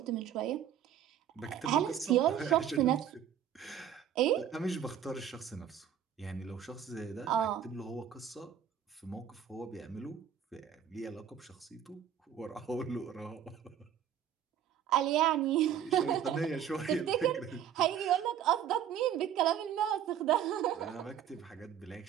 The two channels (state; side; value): quieter; left; 9.4 dB